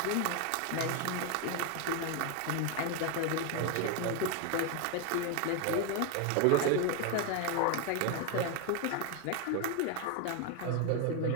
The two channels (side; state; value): both; different; correlation 0.02